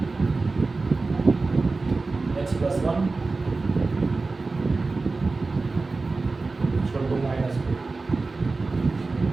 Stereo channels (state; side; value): quieter; left; 3.7 dB